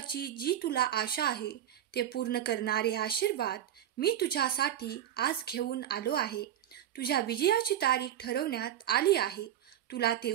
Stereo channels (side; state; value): left; quieter; 11.0 dB